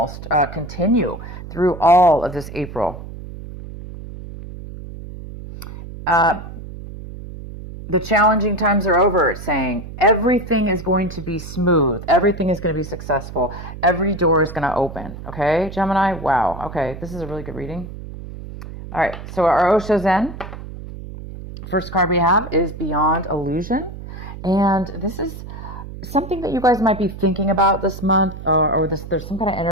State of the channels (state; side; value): noise; right; hum, 12 dB below the sound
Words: continue through all of this April. The challenging times are over, it's saying. Everything is going to be smooth. Everything is going to be successful. Every door is going to open. Okay, Gemini? Wow. Okay, this is a really good reading. All right, so our Osho Zen, first card we have is Beyond Illusion. And this is something that you guys might be thinking about this month, or there's some kind of